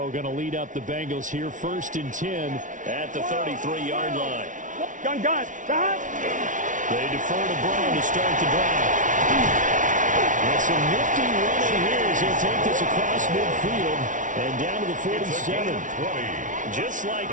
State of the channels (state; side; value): late; left; 0.37 ms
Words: going to lead up the Bengals here, first and 10 at the 33-yard line. Gun. They defer to Brown to start the drive. And some nifty running here as he'll take this across midfield and down to the 47. Just